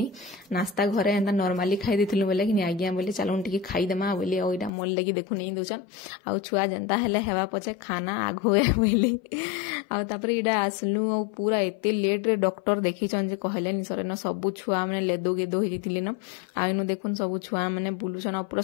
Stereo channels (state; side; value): drops out; right; at 4.7 s